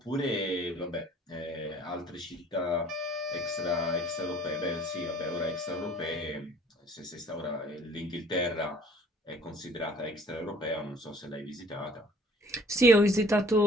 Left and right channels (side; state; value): both; normal; correlation 0.54